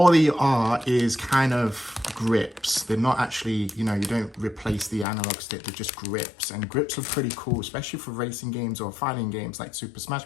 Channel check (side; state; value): right; drops out; at 5.1 s